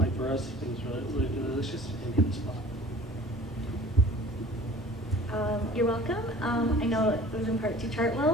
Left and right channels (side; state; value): both; normal; correlation 0.46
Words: for us. It was really, really delicious and hit the spot. You're welcome. I know it was in part to